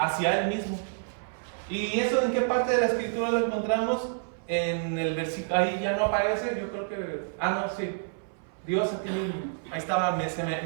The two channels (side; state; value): left; silent; 59 dB below the other